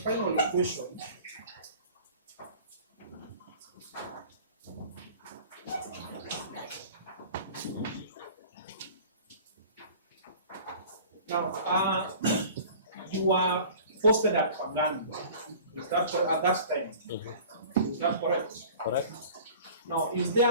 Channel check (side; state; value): both; inverted; correlation -0.44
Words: question. Now, you were posted at Pangani. Is that at that time? Is that correct? Correct. Now, was